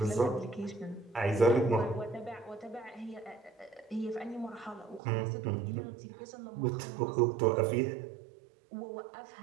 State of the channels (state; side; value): drops out; left; at 5.0 s